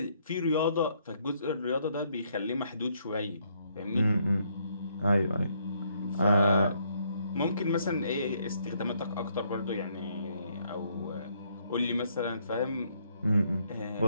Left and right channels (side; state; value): both; inverted; correlation -0.71